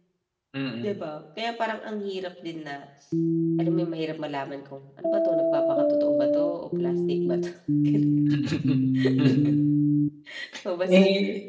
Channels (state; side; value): identical; both; correlation 1.00